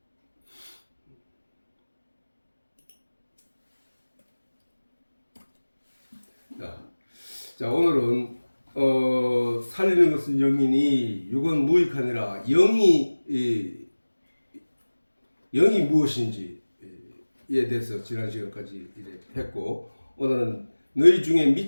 자 오늘은 살리는 것은 영이니 육은 무익하니라. 영이 무엇인지에 대해서 지난 시간까지 했고 오늘은 너희 중에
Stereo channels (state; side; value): inverted; both; correlation -1.00